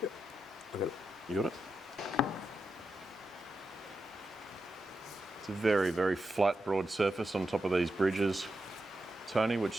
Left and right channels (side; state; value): both; normal; correlation 0.88